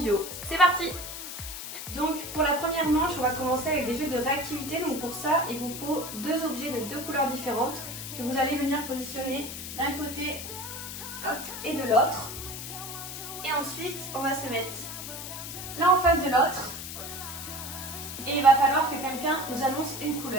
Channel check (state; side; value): noise; left; hiss, 8 dB below the sound